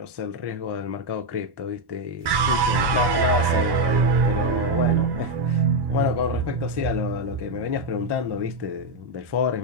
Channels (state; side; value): late; left; 1.1 ms